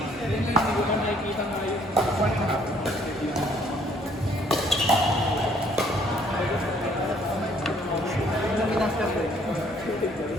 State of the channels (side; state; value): both; normal; correlation 0.63